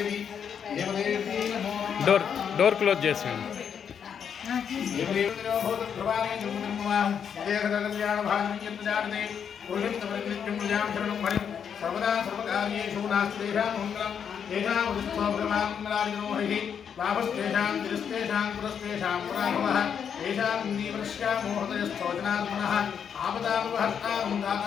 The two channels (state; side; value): quieter; right; 7.7 dB